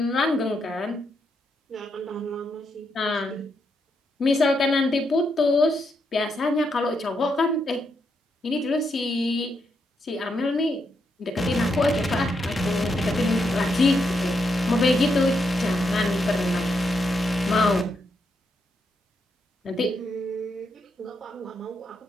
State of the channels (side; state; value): both; normal; correlation 0.81